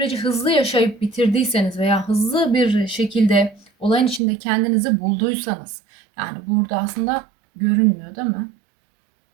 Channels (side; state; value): left; drops out; at 4.2 s